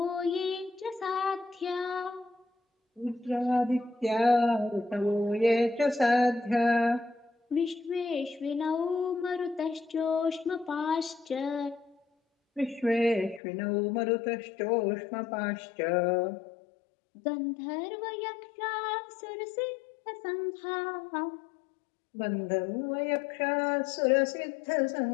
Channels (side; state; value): right; drops out; at 13.4 s